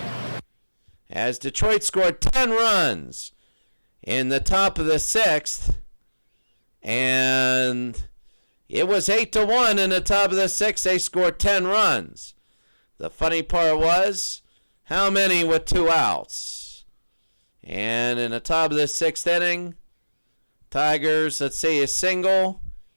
As Detroit scored 10 runs in the top of the 6th, and it was 8-1 in the top of the 6th. They scored 10 runs. The funny part was, how many with 2 outs? And in the top of the 6th inning, Tigers, let's see, a single.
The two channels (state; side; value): inverted; both; correlation -1.00